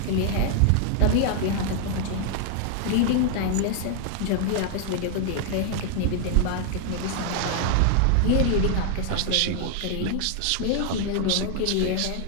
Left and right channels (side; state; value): both; different; correlation 0.00